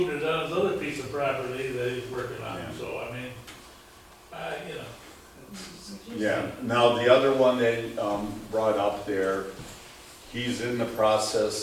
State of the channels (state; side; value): identical; both; correlation 1.00